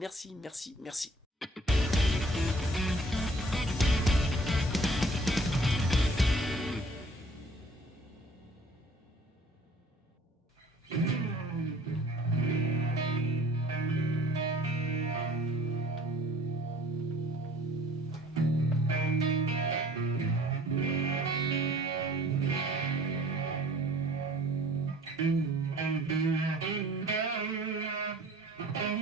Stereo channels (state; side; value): normal; both; correlation 0.52